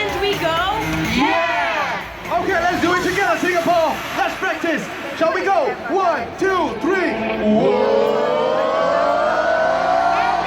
we go. Yeah! Okay, let's do it together, Singapore. Let's practice. Shall we go? 1, 2, 3. And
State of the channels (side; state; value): both; identical; correlation 1.00